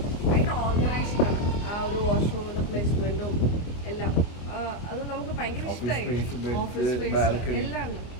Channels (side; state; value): right; late; 24 ms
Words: ഓർഗനൈസ്ഡ് ആണ്. ആ ഒരു വാഷ്റൂമിന്റെ പ്ലേസ്മെന്റും എല്ലാം അത് നമുക്ക് ഭയങ്കര ഇഷ്ടമായി. ഓഫീസ് സ്പേസ് എല്ലാം ഉണ്ട്.